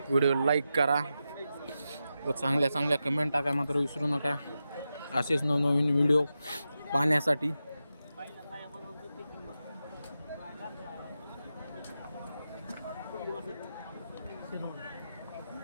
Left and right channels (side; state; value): both; inverted; correlation -0.90